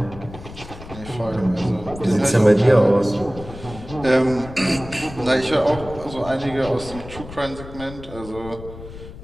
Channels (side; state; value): left; noise; rumble, 14 dB below the sound